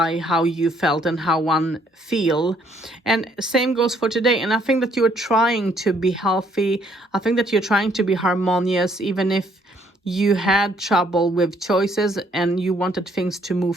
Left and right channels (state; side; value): normal; both; correlation 0.67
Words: how you felt and how one feel. And same goes for today. And I think that you are trying to be healthy. I think that you're trying to be harmonious, even if you had trouble with choices and you wanted things to move